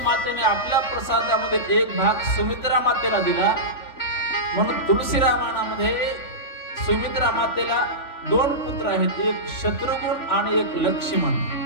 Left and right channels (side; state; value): right; late; 3.6 ms